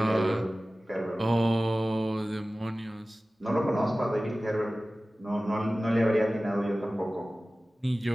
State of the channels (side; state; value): both; normal; correlation 0.97